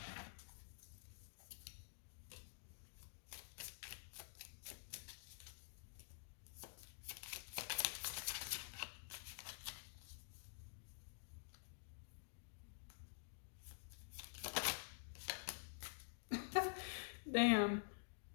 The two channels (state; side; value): silent; right; digital silence